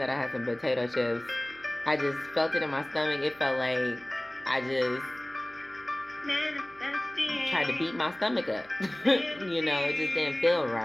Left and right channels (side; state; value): right; noise; hum, 26 dB below the sound